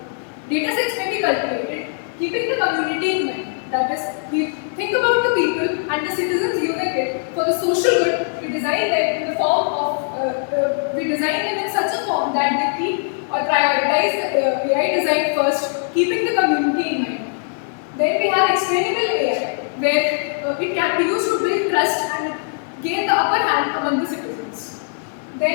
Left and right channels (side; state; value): right; silent; digital silence